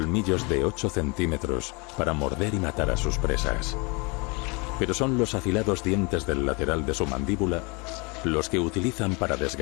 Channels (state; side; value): quieter; right; 29.4 dB